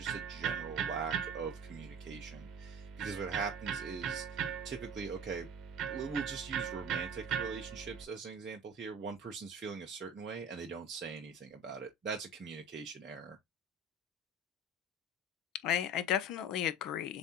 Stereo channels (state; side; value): normal; both; correlation 0.37